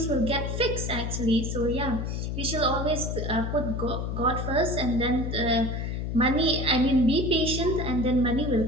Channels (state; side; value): noise; left; hum, 3 dB below the sound